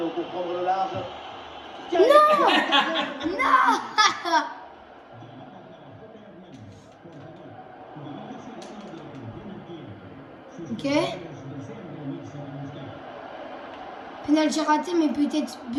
pour prendre le large. Non. Ok. Penalty raté, mais peut-être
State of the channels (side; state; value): both; identical; correlation 1.00